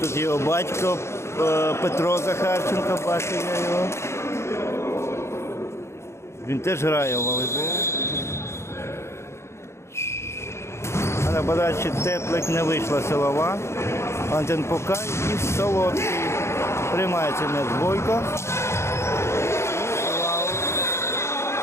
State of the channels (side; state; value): right; late; 0.13 ms